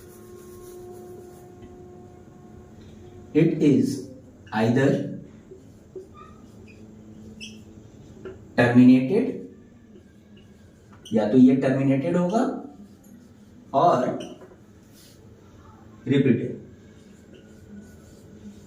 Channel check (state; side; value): identical; both; correlation 1.00